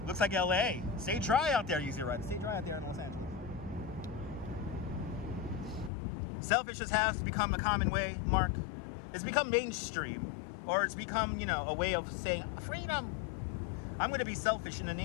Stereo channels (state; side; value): drops out; right; at 5.9 s